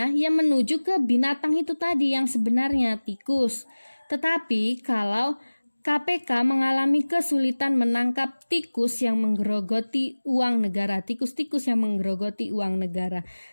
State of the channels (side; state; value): both; inverted; correlation -1.00